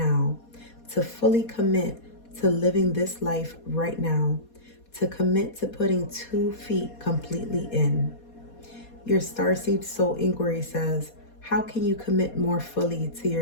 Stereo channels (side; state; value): right; late; 4.2 ms